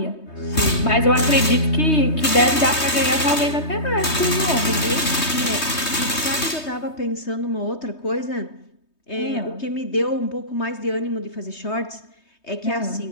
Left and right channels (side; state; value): right; late; 3.2 ms